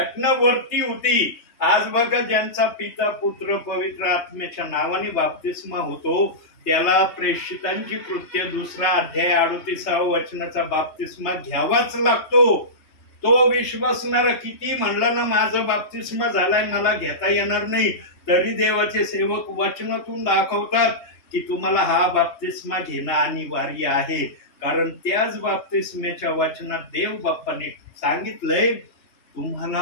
वरती होती. आज बघा, ज्यांचा पिता, पुत्र, पवित्र आत्म्याच्या नावाने बाप्तिस्मा होतो, त्याला प्रेषितांची कृत्य 2 अध्याय 38व्या वचनाचा बाप्तिस्मा घ्यावाच लागतो. तो विश्वासणारा किती म्हणलं ना माझं बाप्तिस्मा झालाय मला घेता येणार नाही, तरी देवाचे सेवक वचनातून दाखवतात की तुम्हाला हा बाप्तिस्मा घेणं अनिवार्य आहे. कारण त्याच बाप्तिस्म्याच्या वचनात देव बाप्पाने सांगितलंय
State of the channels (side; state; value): right; late; 3.2 ms